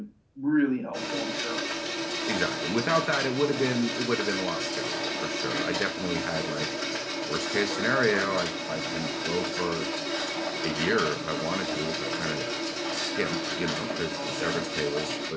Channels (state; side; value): identical; both; correlation 1.00